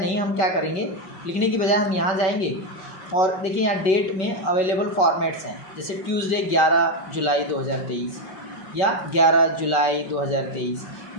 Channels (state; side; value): late; right; 5.5 ms